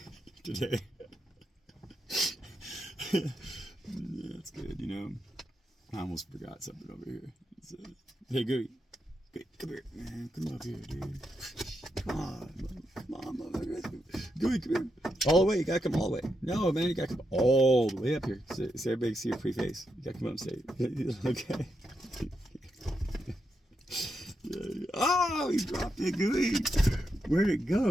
today. That's good, I almost forgot something over here. Hey, Gooey, come here, man. Come up here, dude. Come on, motherfucker. Gooey, come here. All the way. You gotta come all the way. No, man, you gotta come all the way up here so everybody can see your pretty face. You gotta come up and say it. Okay. Oh, you dropped it, Gooey. Where'd it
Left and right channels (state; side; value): normal; both; correlation 0.83